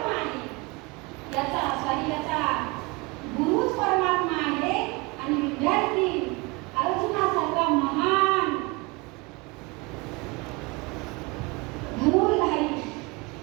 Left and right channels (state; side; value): quieter; left; 26.2 dB